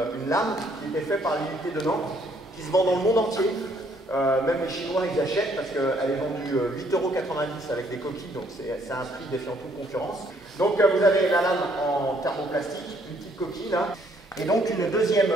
lame qui était faite par l'unité de Nantes, qui se vend dans le monde entier. Même les Chinois, ils achètent parce qu'elle est vendue 8,90 € avec des coquilles, donc c'est un prix défiant toute concurrence. Donc vous avez la lame en thermoplastique, une petite coquille là, et donc une deuxième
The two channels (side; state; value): both; normal; correlation 0.66